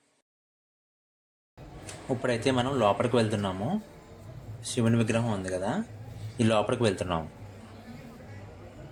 ఇప్పుడైతే మనం లోపలికి వెళ్తున్నాము. శివుని విగ్రహం ఉంది కదా, ఈ లోపలికి వెళ్తున్నాము.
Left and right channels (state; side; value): identical; both; correlation 1.00